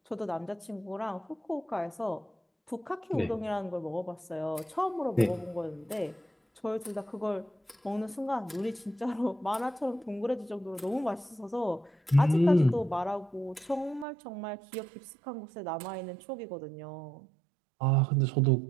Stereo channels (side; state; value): left; drops out; at 14.1 s